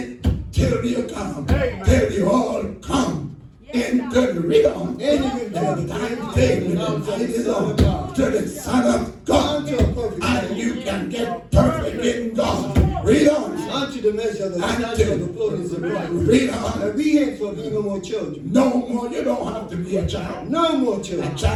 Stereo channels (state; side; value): identical; both; correlation 1.00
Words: till you come. Till you all come. Into the read on. To the Son of God. And you can get perfect in God. Read on. Unto the measure of the stature of the fullness of Christ. Read on. And we ain't for no more children. No more. You don't have to be a child. No more children. A